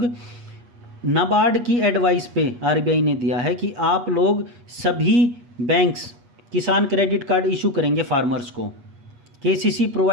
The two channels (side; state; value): left; late; 8.3 ms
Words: नाबार्ड की एडवाइस पे आरबीआई ने दिया है कि आप लोग सभी banks Kisan credit card issue करेंगे फार्मर्स को। KCC